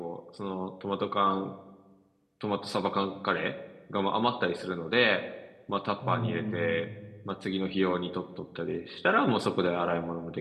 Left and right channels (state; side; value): identical; both; correlation 1.00